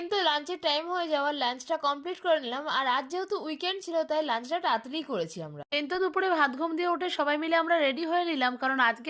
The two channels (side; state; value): both; identical; correlation 1.00